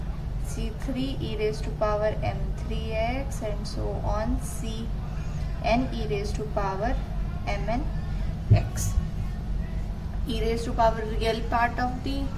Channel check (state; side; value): identical; both; correlation 1.00